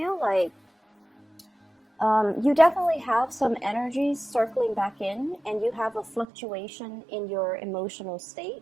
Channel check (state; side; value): drops out; left; at 6.2 s